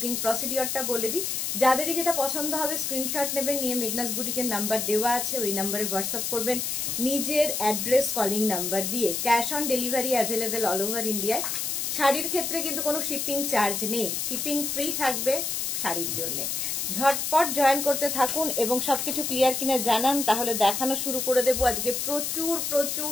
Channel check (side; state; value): left; noise; hiss, 1 dB below the sound